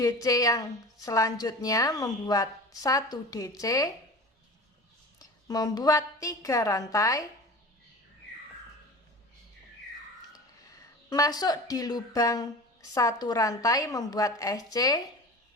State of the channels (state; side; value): normal; both; correlation 0.36